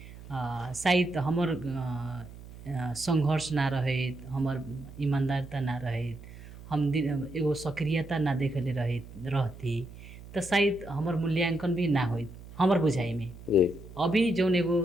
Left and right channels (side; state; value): right; noise; hum, 16 dB below the sound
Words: शायद हमर संघर्ष ना रहे, हमर ईमानदारता ना रहे, हम एगो सक्रियता ना देखले रहती तो शायद हमर मूल्यांकन भी ना होइत हमर बुझाई में। अभी जौन एगो